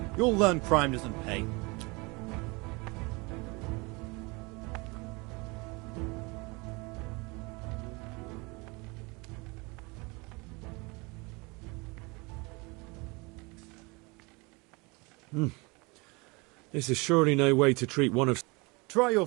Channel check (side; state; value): left; quieter; 26.9 dB